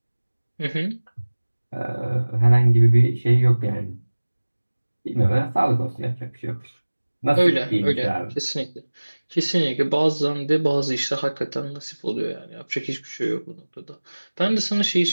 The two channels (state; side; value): inverted; both; correlation -1.00